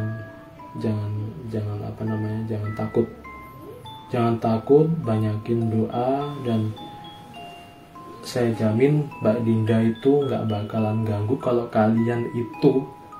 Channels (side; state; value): both; identical; correlation 1.00